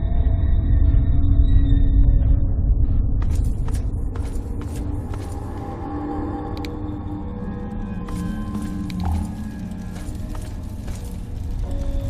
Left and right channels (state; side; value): identical; both; correlation 1.00